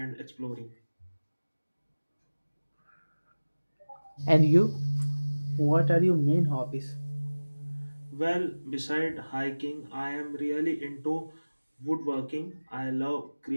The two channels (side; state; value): both; inverted; correlation -1.00